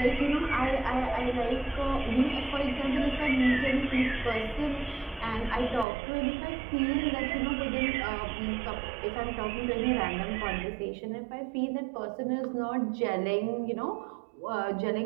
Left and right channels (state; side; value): drops out; left; at 5.9 s